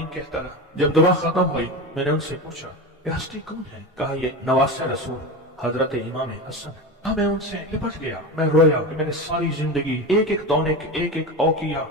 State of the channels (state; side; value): normal; both; correlation 0.24